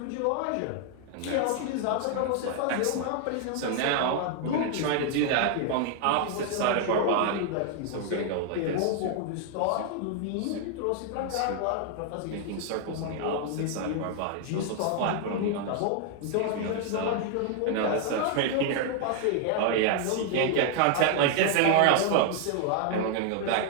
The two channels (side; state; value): both; different; correlation 0.00